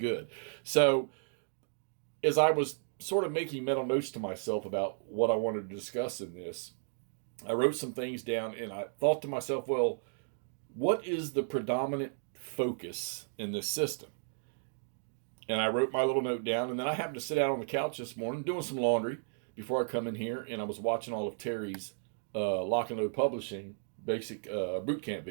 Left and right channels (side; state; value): left; silent; digital silence